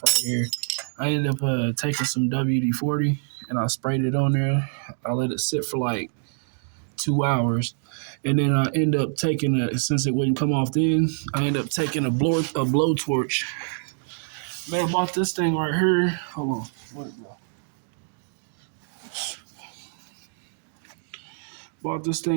right here. I ended up taking some WD-40 and I sprayed it on there. I let it sit for like 2 hours. And then I end up taking since it wouldn't come off then, I end up taking a blowtorch. Man, I bought this thing right here. Hold on. Where'd it go? Bought this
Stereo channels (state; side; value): silent; left; digital silence